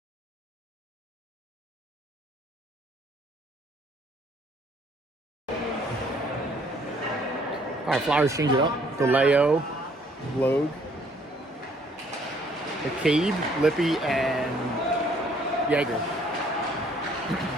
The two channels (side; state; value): both; normal; correlation 0.62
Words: All right, Flyers change it up. DeLeo, Logue, McCabe, Lippy, and Yeager.